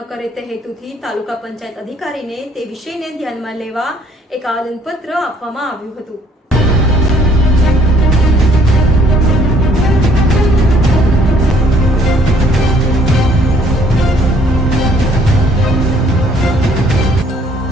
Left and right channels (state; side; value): normal; both; correlation 0.62